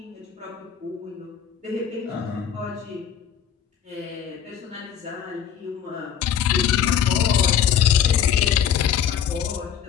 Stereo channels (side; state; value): right; quieter; 8.8 dB